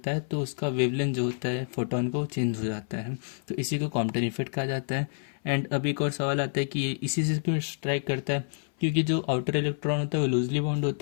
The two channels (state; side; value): silent; right; 59 dB below the other